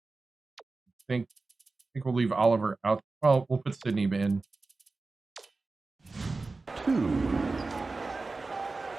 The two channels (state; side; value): quieter; left; 3.6 dB